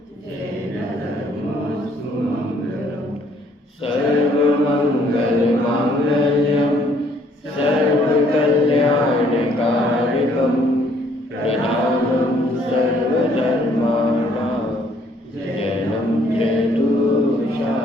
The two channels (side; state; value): both; normal; correlation 0.64